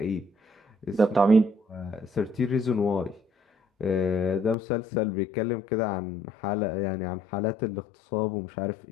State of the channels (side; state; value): right; drops out; at 4.5 s